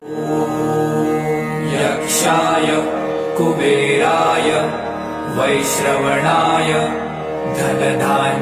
यक्षाय कुबेराय वैश्रवणाय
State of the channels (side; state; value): both; identical; correlation 1.00